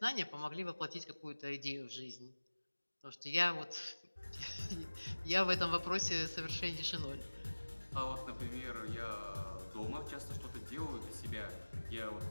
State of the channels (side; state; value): both; inverted; correlation -1.00